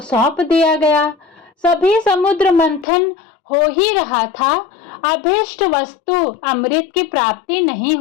सौंप दिया गया। सभी समुद्र मंथन हो ही रहा था, अभीष्ट वस्तु अमृत की प्राप्ति नहीं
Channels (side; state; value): right; drops out; at 2.9 s